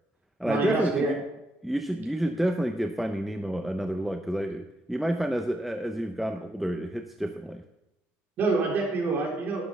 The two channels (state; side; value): normal; both; correlation 0.79